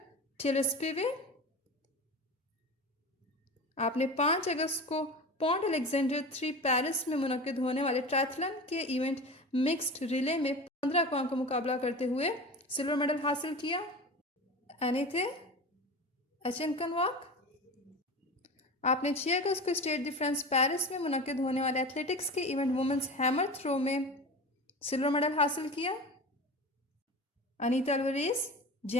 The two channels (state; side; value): normal; both; correlation 0.31